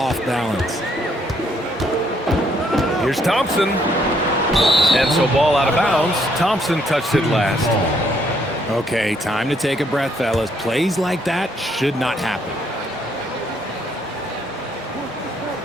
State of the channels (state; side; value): normal; both; correlation 0.69